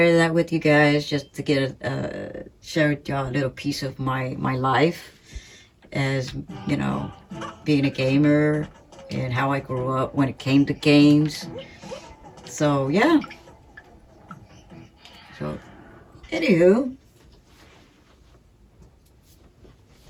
that with you guys, just to get share y'all a little piece of my life as, you know, being a gamer and how I grew up when it came to games. So yeah. So anywho,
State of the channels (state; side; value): identical; both; correlation 1.00